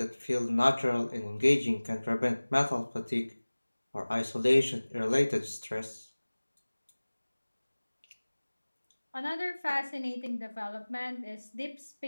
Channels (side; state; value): both; inverted; correlation -1.00